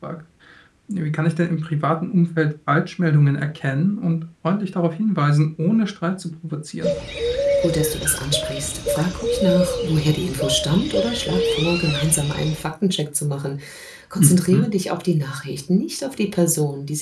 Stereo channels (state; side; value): identical; both; correlation 1.00